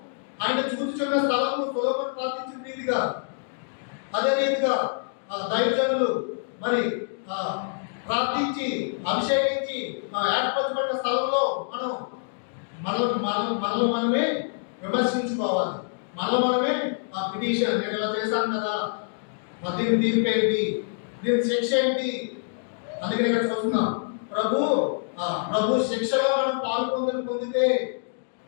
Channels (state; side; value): silent; right; digital silence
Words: ఆయన చూచుచున్న స్థలము సొలొమోను ప్రార్థించిన రీతిగా, అదే రీతిగా దైవజనులు మరి ప్రార్థించి అభిషేకించి ఏర్పరచబడిన స్థలంలో మనల్ని మనమే విమర్శించుకోవాలి. మనమే పిటిషన్, నేను ఇలా చేశాను కదా, దీని తీర్పు ఏంటి, దీని శిక్ష ఏంటి? అందుకని ఇక్కడ చూస్తున్నాం, ప్రభు శిక్షలో మనం పొందితే